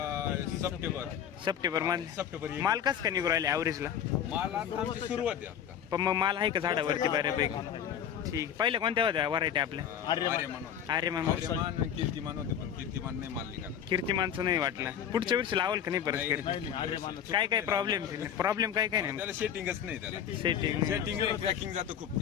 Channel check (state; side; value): quieter; right; 9.1 dB